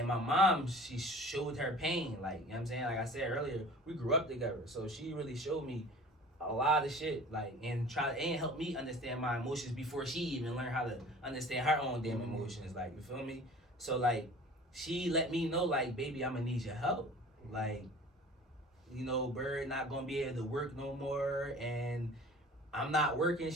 my mom, she showed her pain. Like, you know what I'm saying? Like I said earlier, we grew up together. So she really showed me a lot of shit. Like and help me understand my emotions before she even learned how to understand her own damn emotions. Like, you feel me? So like she let me know, like, baby, I'ma need your help. Like, you know, Bird not gonna be able to work no more, and I'm not working.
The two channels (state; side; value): normal; both; correlation 0.44